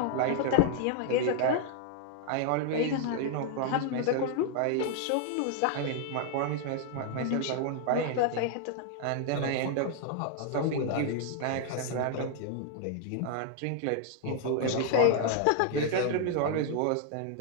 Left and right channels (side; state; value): both; different; correlation 0.00